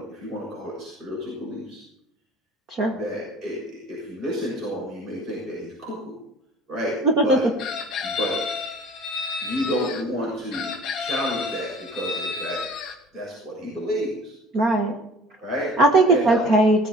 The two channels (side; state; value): both; normal; correlation 0.47